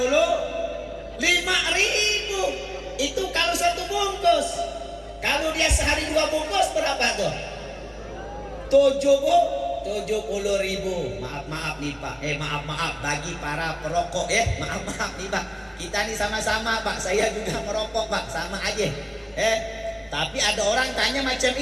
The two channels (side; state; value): both; identical; correlation 1.00